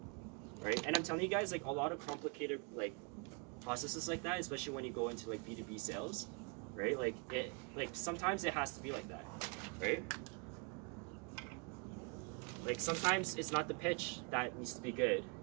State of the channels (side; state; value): left; quieter; 33.5 dB